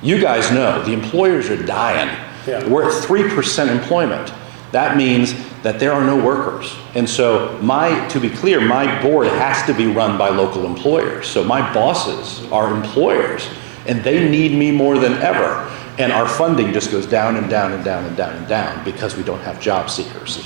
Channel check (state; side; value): silent; left; digital silence